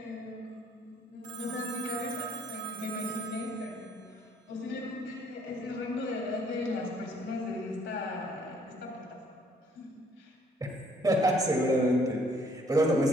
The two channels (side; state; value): both; normal; correlation 0.63